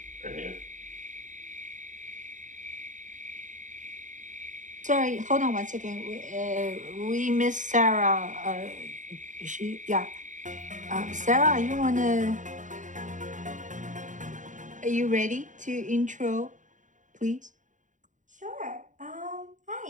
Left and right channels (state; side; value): late; left; 0.36 ms